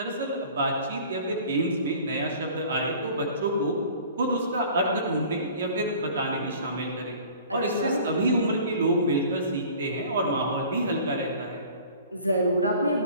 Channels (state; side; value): inverted; both; correlation -0.47